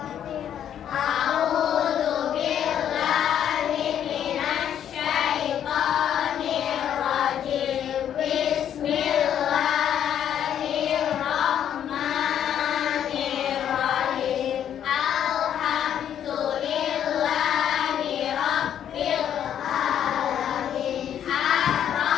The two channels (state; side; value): quieter; right; 9.7 dB